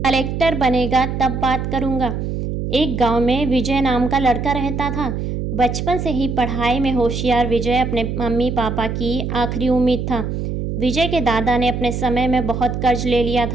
Collector बनेगा तब बात करूँगा। एक गांव में विजय नाम का लड़का रहता था। बचपन से ही पढ़ाई में होशियार विजय अपने मम्मी पापा की आखिरी उम्मीद था। विजय के दादा ने अपने समय में बहुत कर्ज ले लिया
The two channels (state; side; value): noise; right; hum, 3 dB below the sound